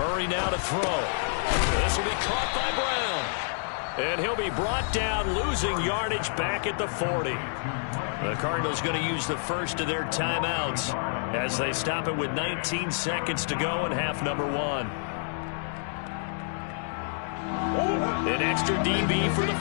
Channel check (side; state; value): right; silent; digital silence